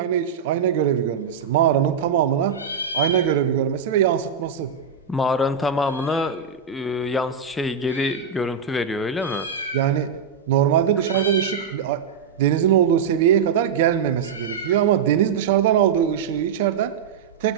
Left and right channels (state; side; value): quieter; left; 6.6 dB